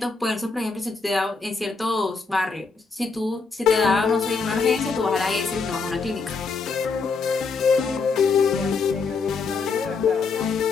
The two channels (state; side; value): quieter; right; 4.6 dB